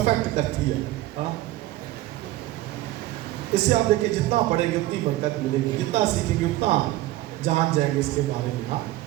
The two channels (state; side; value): quieter; left; 16.5 dB